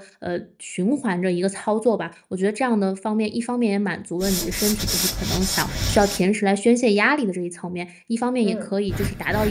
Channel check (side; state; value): both; identical; correlation 1.00